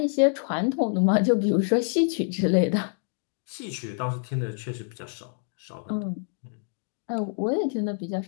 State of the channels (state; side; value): silent; right; 60 dB below the other